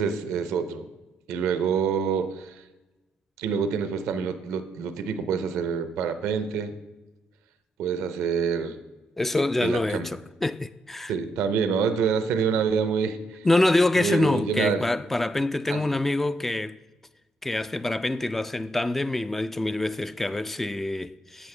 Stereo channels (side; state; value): both; normal; correlation 0.77